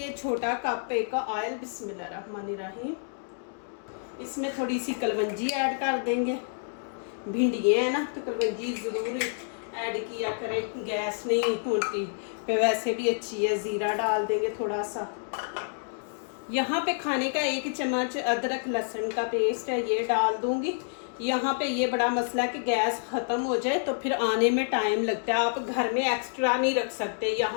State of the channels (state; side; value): silent; right; digital silence